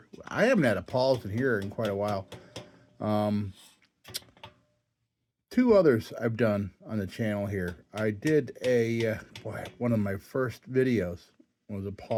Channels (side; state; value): both; identical; correlation 1.00